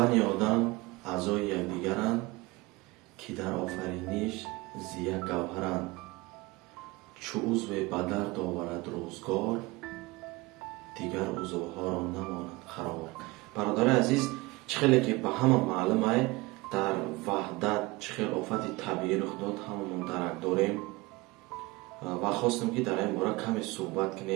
одам аъзои якдигаранд ки дар офариниш зия гавҳаранд. чу узве ба дард оварад рӯзгор дигар узвҳоро намонад қарор. бародари азиз, чӣ хеле ки ба ҳама маълум ай дар ваҳдат чӣ хел офати табиӣ рух дод ҳамамон дарак дорем ва хостем ки дар ин бора каме суҳбат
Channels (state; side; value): quieter; left; 22.5 dB